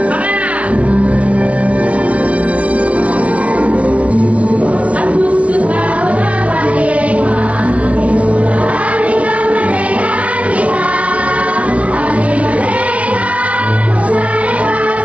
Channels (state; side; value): late; left; 0.064 ms